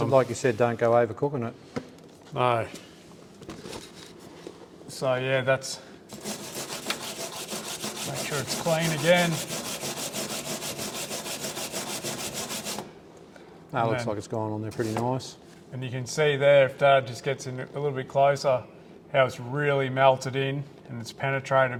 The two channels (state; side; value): identical; both; correlation 1.00